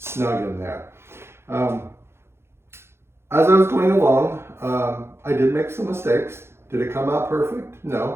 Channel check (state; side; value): late; left; 0.12 ms